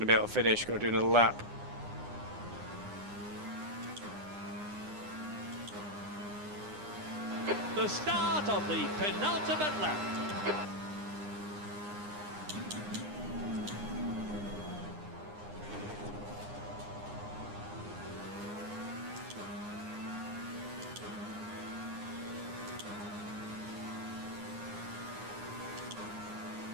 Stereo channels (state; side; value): late; left; 9.8 ms